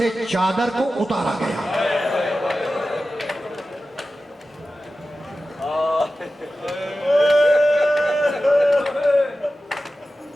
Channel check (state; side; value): normal; both; correlation 0.94